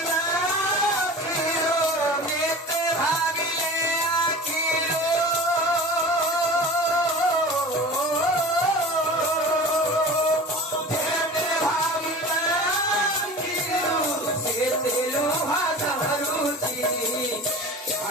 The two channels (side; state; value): both; normal; correlation 0.37